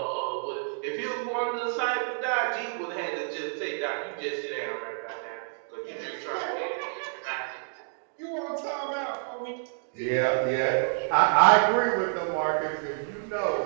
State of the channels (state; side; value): silent; left; digital silence